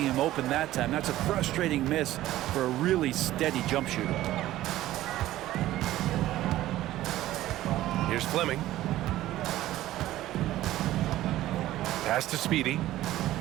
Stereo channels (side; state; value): left; quieter; 14.9 dB